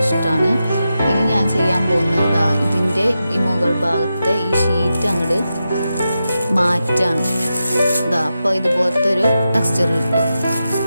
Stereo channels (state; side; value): inverted; both; correlation -0.89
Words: ഇഷ്ടമാണ്. ഇനി ഞാൻ ചെയ്യാൻ പോകുന്നത് ഇതിൻ്റെ ഈ മുകൾ ഭാഗത്തെ ഈ ഷീറ്റ് അങ്ങോട്ട് മാറ്റാണ്. അപ്പോൾ ഇതുപോലത്തെ ഒരു ടെക്സ്ചർ